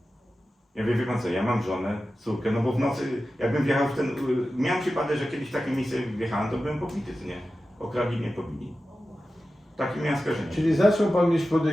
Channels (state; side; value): normal; both; correlation 0.93